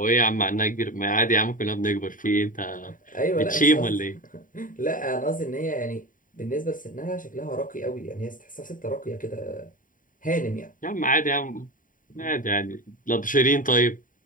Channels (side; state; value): right; late; 0.39 ms